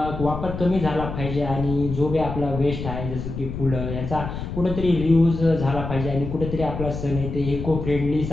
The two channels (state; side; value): noise; left; rumble, 6 dB below the sound